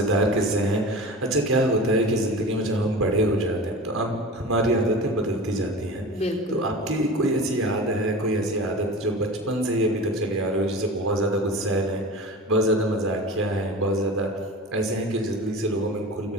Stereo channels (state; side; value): normal; both; correlation 0.33